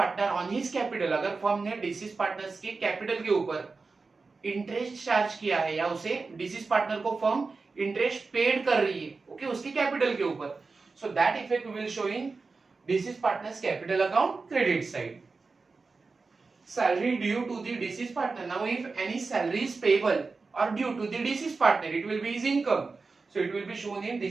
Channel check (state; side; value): quieter; left; 4.2 dB